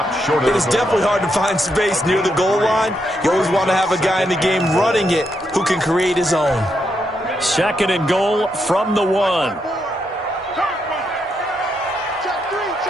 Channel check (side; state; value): both; normal; correlation 0.80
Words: short of It is definitely hard to find space near the goal line. You always want to have a guy in the game running it who can create his own. 2nd and goal from the 1.